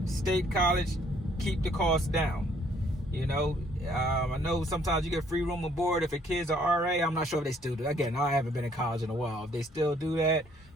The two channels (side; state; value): both; normal; correlation 0.64